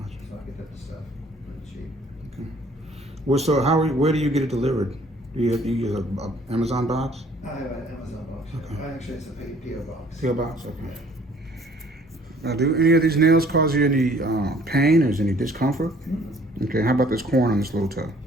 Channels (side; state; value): both; normal; correlation 0.57